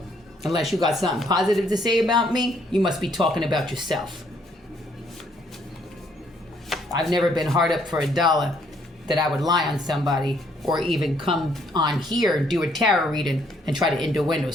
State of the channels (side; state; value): both; normal; correlation 0.68